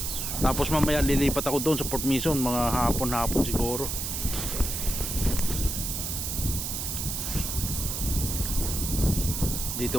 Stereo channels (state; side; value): noise; right; hiss, 3 dB below the sound